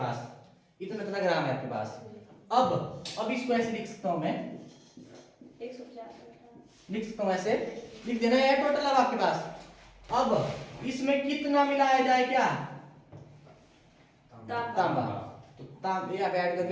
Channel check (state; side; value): identical; both; correlation 1.00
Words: इतना इतना ग्राम है आपके पास। अब इसको ऐसे लिख सकता हूं मैं, 150 लिख सकता हूं ऐसे, लिख देना है टोटल अब आपके पास। अब इसमें कितना मिलाया जाए, क्या तांबा, तो तांबे आप ऐड